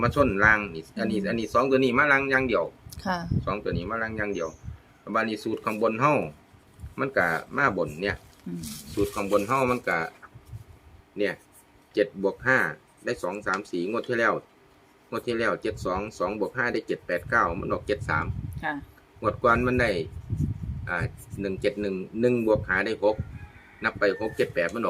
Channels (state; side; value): identical; both; correlation 1.00